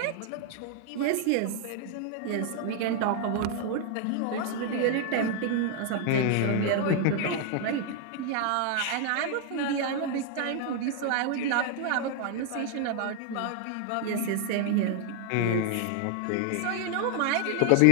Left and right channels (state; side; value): different; both; correlation 0.00